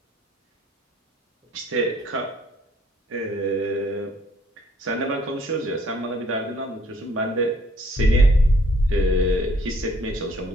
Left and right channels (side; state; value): both; normal; correlation 0.62